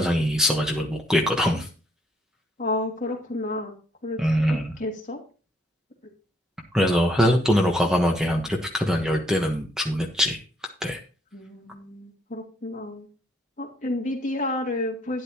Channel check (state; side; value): normal; both; correlation 0.69